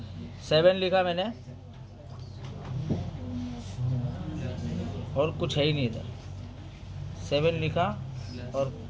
7 लिखा मैंने और कुछ है ही नहीं इधर, 7 लिखा और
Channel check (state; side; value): identical; both; correlation 1.00